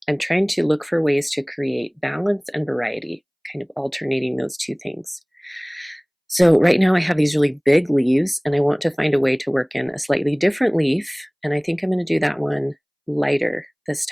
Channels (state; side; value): identical; both; correlation 1.00